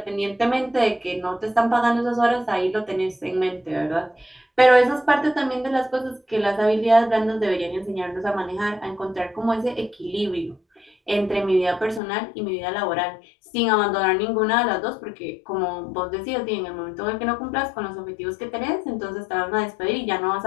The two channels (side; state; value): right; drops out; at 12.0 s